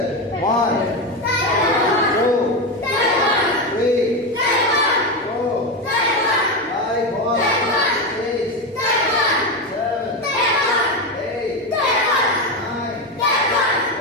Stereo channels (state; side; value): normal; both; correlation 0.14